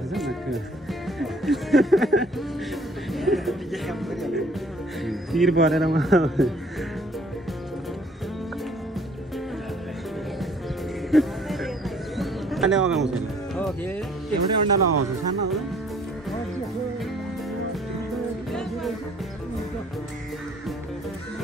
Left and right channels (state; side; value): normal; both; correlation 0.59